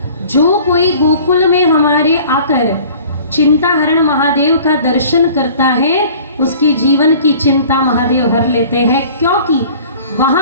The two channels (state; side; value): inverted; both; correlation -0.48